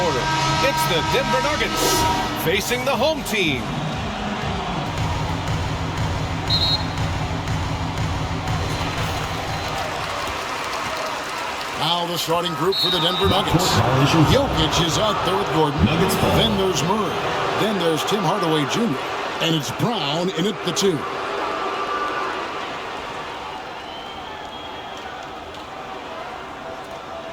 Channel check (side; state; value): both; identical; correlation 1.00